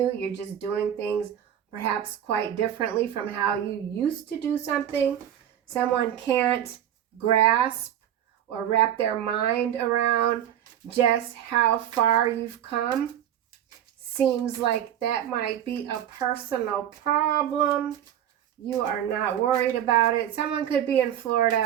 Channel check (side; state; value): left; quieter; 10.6 dB